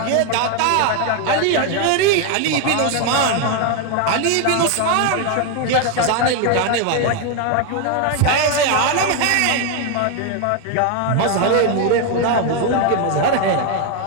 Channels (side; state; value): both; different; correlation 0.01